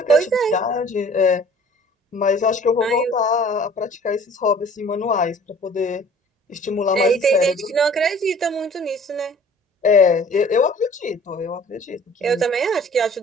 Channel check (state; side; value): normal; both; correlation 0.50